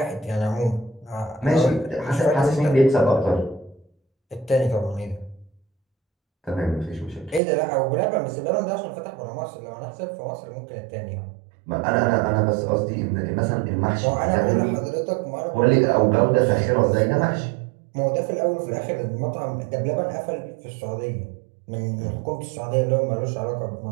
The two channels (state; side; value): drops out; left; at 7.4 s